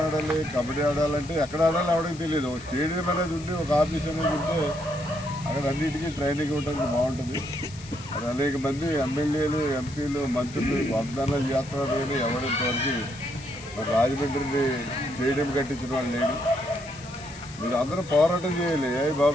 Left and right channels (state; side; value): noise; left; hiss, 18 dB below the sound